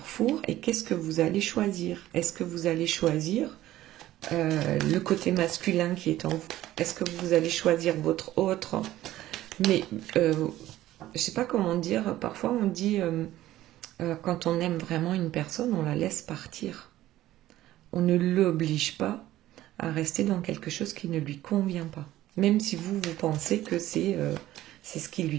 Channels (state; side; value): quieter; left; 14.7 dB